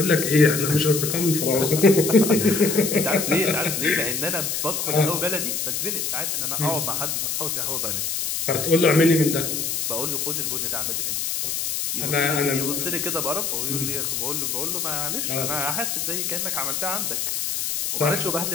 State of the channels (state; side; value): noise; left; hiss, 1 dB below the sound